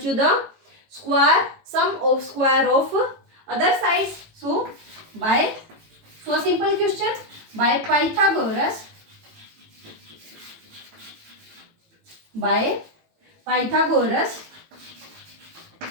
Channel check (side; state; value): left; late; 18 ms